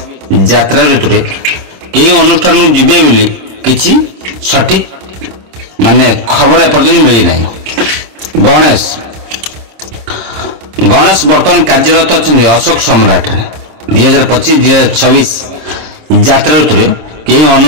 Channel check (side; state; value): left; late; 26 ms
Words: यात्रा ऋतु रे केउ अनुष्ठान को जिबे बोली किछि सठिक माने खबर एपर्यंत मिली नै। गणेश वर्तमान कार्यरत अछंती अशोक सम्राट रे। 2025-2026 यात्रा ऋतु रे केउ